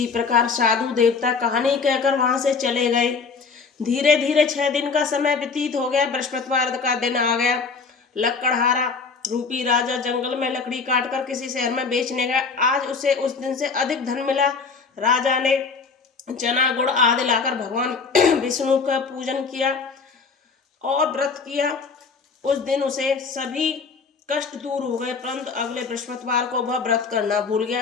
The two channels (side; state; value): right; quieter; 5.0 dB